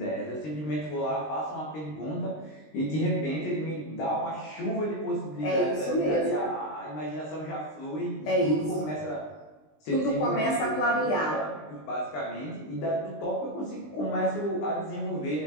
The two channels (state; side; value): late; right; 20 ms